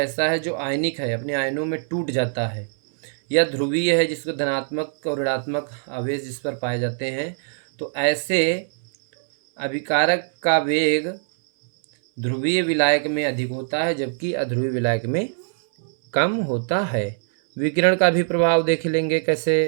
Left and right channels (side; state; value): left; silent; 64 dB below the other